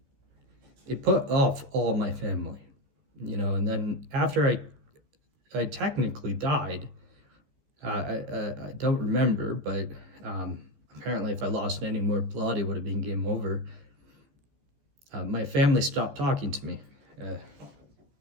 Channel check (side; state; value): left; late; 14 ms